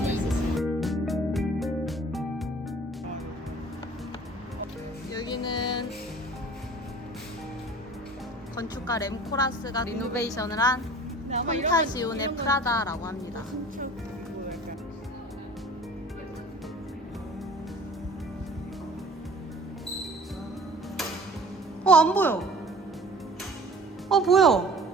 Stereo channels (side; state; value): both; normal; correlation 0.46